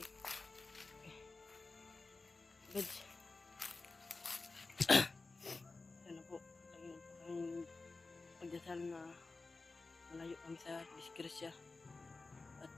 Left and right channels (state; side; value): quieter; right; 3.7 dB